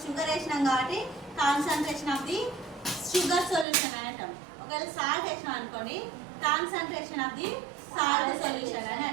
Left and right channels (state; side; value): drops out; left; at 3.7 s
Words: షుగర్ వేసినాం కాబట్టి concentration of the sugar solution అని అంటాం. ఒకవేళ సాల్ట్ వేసినాం అనుకోండి concentration of the salt solution అని